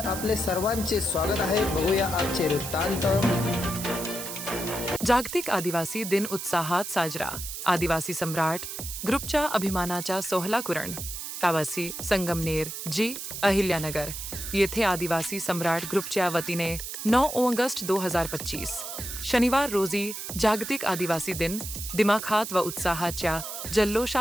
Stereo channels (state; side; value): noise; right; hiss, 7 dB below the sound